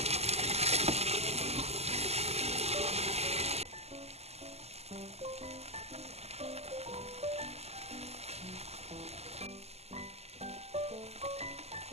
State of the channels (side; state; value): left; late; 0.30 ms